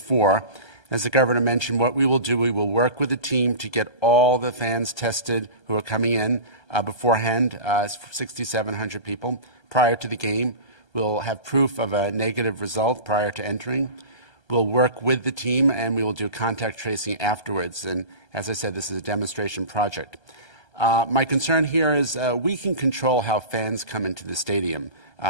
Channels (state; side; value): late; right; 1.3 ms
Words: As the Governor mentioned, what we will do, we will work with the team to get all the fans tested who are coming in beforehand, 6,700 people, prior to the game. We'll have proof of a negative result prior to entering. We'll work with the team, and we will do contact tracing afterwards. And as I said, this is a demonstration project. My concern here is we can control how fans come into the stadium.